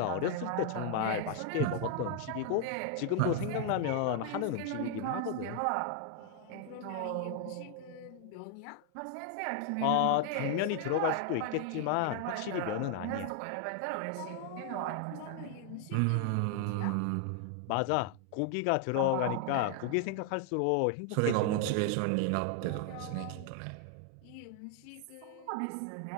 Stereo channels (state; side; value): different; both; correlation 0.00